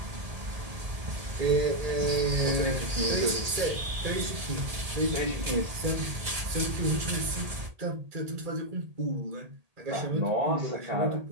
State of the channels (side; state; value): left; late; 1.8 ms